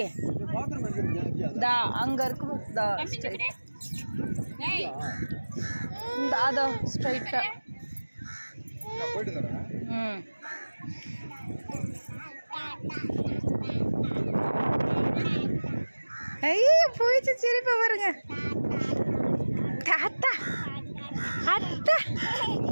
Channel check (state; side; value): inverted; both; correlation -1.00